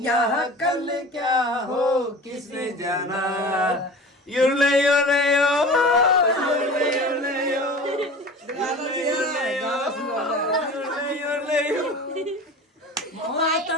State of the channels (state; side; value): normal; both; correlation 0.37